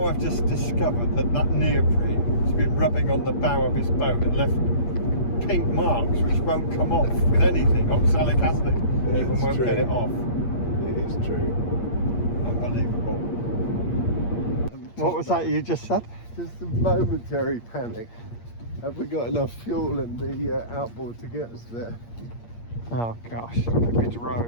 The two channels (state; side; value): late; right; 8.5 ms